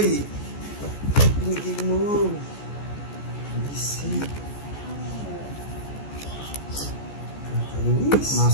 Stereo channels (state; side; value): late; right; 14 ms